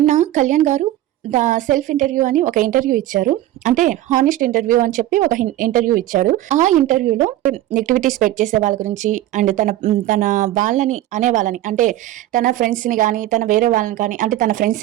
కళ్యాణ్ గారు సెల్ఫ్ ఇంటర్వ్యూ అని ఒక ఇంటర్వ్యూ ఇచ్చారు. అంటే హానెస్ట్ ఇంటర్వ్యూ అని చెప్పి ఒక ఇంటర్వ్యూ ఇచ్చారు. ఆ ఇంటర్వ్యూలో నెగిటివిటీ స్ప్రెడ్ చేసే వాళ్ళ గురించి అండ్ తన వాళ్ళని అనే వాళ్ళని, అంటే తన ఫ్రెండ్స్ని కానీ, తన వేరే వాళ్ళని కానీ, అంటే తన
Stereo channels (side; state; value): left; quieter; 14.3 dB